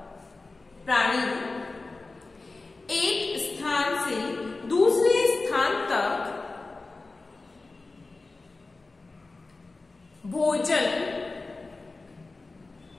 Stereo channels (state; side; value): quieter; right; 3.5 dB